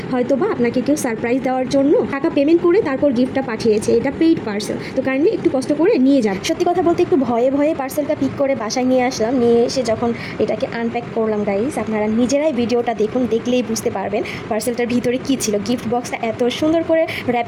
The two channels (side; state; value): both; identical; correlation 1.00